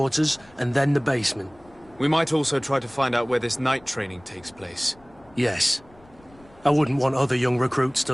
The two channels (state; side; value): noise; left; rumble, 27 dB below the sound